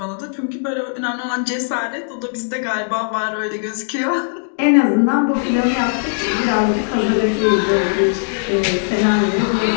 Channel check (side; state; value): right; silent; digital silence